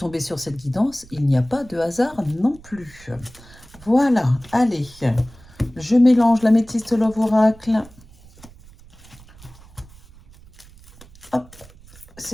sur cette guidance, il n'y a pas de hasard non plus. Voilà, allez. Je mélange l'améthyste Love Oracle. Hop,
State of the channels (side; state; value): right; noise; rumble, 23 dB below the sound